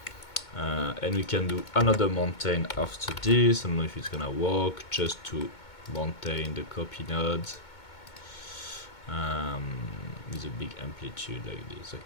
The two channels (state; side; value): late; right; 2.2 ms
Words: and we can do another mountain after this. I don't know if it's gonna work, just to maintain the copy node with a big amplitude like this.